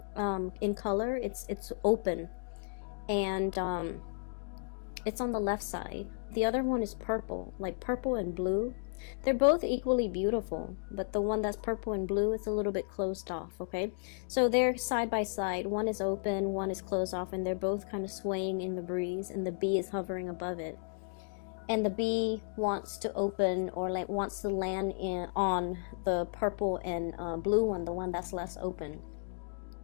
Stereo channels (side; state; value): right; silent; digital silence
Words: in color. It's open, and it's on the left side. The other one is purple, like purple and blue. They're both equally beautiful, but the one that's purple and blue is a little bit closed off, okay? So they're side by side. One is open, one is closed off, and they're both kind of swaying in the breeze, and the bee is hovering above it. And the bee wants to open or wants to land on the purple and blue one, the one that's less open.